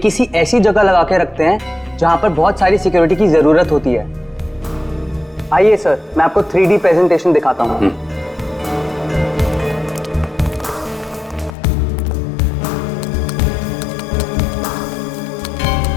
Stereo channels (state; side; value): drops out; right; at 11.6 s